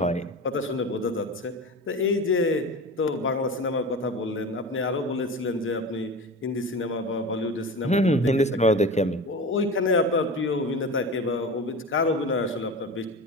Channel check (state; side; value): normal; both; correlation 0.31